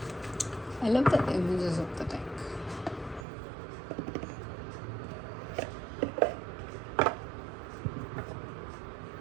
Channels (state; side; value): drops out; left; at 3.2 s